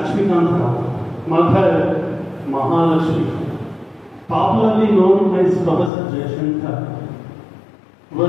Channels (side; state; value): right; drops out; at 5.9 s